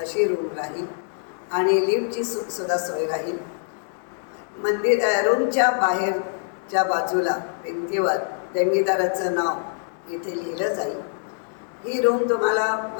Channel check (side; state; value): right; silent; 62 dB below the other